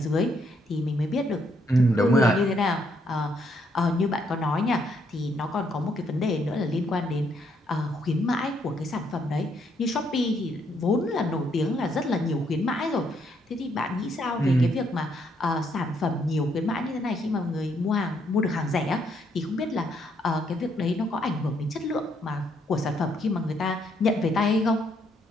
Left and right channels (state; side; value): normal; both; correlation 0.73